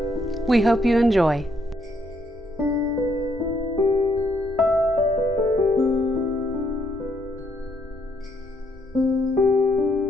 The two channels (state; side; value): normal; both; correlation 0.72